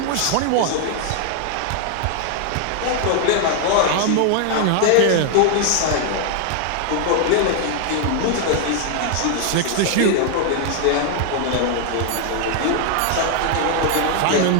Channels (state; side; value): different; both; correlation 0.00